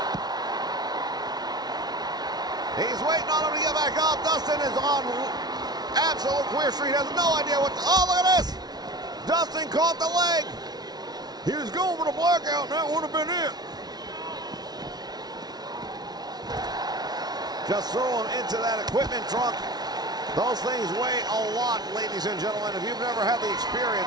He's waiting on him to get back up. Dustin is on absolute queer street. Has no idea what to, oh, look at this. Dustin caught the leg. He was going for the blackout, and that would have been it. Just throw him into that equipment trunk. Those things weigh a lot, ladies and gentlemen. If you've never had the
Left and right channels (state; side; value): late; left; 0.19 ms